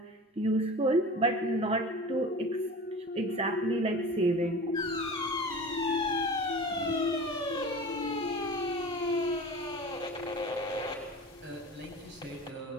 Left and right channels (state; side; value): normal; both; correlation 0.36